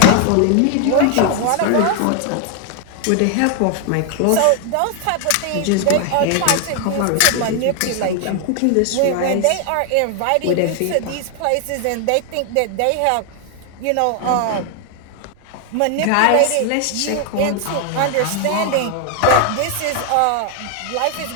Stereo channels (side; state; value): both; different; correlation 0.00